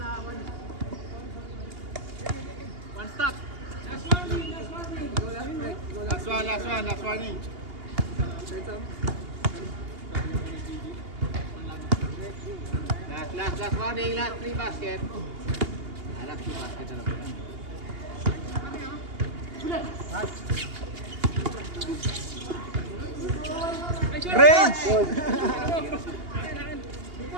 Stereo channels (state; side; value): late; left; 2.8 ms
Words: Last warning, last 3 basket. Last 2 basket na lang. Range!